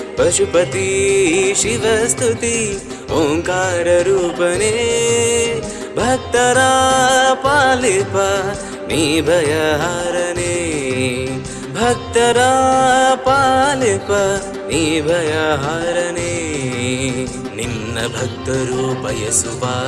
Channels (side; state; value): both; identical; correlation 1.00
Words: ಪಶುಪತಿ ಶಿವಸ್ತುತಿ ಓಂಕಾರ ರೂಪನೆ, ಭಕ್ತರ ಪಾಲಿಪ ನೀ ಭಯಹಾರನೆ, ಭಕ್ತರ ಪಾಲಿಪ ನೀ ಭಯಹಾರನೆ, ನಿನ್ನ ಭಕ್ತರು ಬಯಸುವ